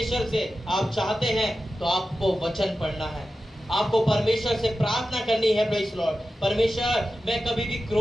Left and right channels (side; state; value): both; normal; correlation 0.93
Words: से आप चाहते हैं तो आपको वचन पढ़ना है, आपको परमेश्वर से प्रार्थना करनी है प्रेज़ द लॉर्ड। परमेश्वर, मैं कभी भी